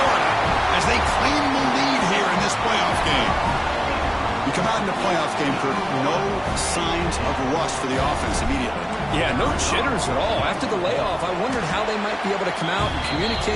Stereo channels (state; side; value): identical; both; correlation 1.00